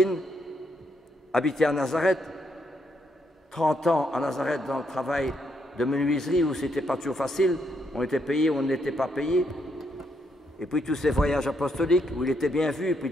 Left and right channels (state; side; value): normal; both; correlation 0.76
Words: habiter à Nazareth, 30 ans à Nazareth dans le travail de menuiserie où c'était pas toujours facile, on était payé ou on n'était pas payé. Et puis tous ces voyages apostoliques où il était bien vu, et puis